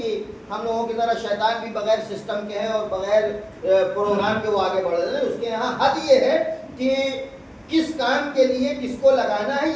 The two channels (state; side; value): identical; both; correlation 1.00